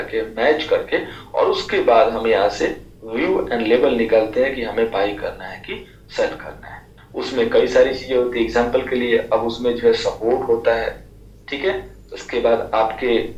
मैच करके, और उसके बाद हम यहाँ से व्यू एंड लेवल निकालते हैं कि हमें बाई करना है कि सेल करना है। उसमें कई सारी चीजें होती है, एग्जांपल के लिए अब उसमें जो है सपोर्ट होता है, ठीक है, उसके बाद आपके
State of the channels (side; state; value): both; identical; correlation 1.00